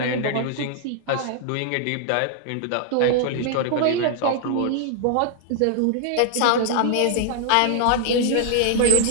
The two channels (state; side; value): different; both; correlation 0.00